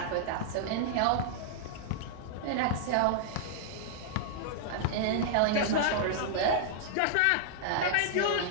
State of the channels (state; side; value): different; both; correlation -0.01